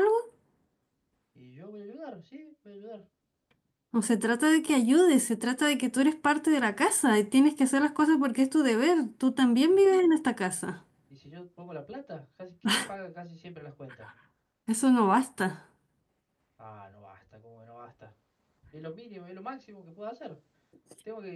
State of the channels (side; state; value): both; identical; correlation 1.00